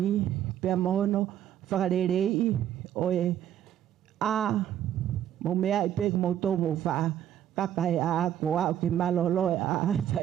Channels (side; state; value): left; quieter; 10.9 dB